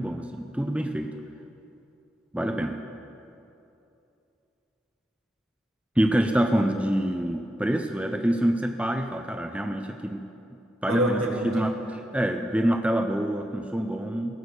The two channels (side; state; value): both; normal; correlation 0.87